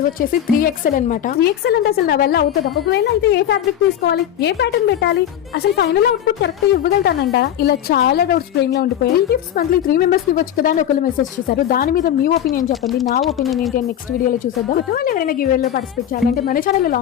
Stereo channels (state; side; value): quieter; right; 10.5 dB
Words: వచ్చేసి 3XL అనమాట. 3XL అంటే అసలు నా వల్ల అవుతుందా? ఒకవేళ అయితే ఏ ఫ్యాబ్రిక్ తీసుకోవాలి, ఏ ప్యాటర్న్ పెట్టాలి, అసలు ఫైనల్ అవుట్పుట్ కరెక్ట్ గా ఇవ్వగలుగుతానంట? ఇలా చాలా డౌట్స్ బ్రెయిన్ లో ఉండిపోయాయి. ఈ గిఫ్ట్స్ మంత్లీ 3 మెంబర్స్ కి ఇవ్వచ్చు కదా అని ఒకరు మెసేజ్ చేశారు. దాని మీద మీ ఒపీనియన్ చెప్పండి. నా ఒపీనియన్ ఏంటి అని నెక్స్ట్ వీడియోలో చూసేద్దాం. కొత్త వాళ్ళు ఎవరైనా గివ్ లో పార్టిసిపేట్ చేయాలంటే మన ఛానల్ లో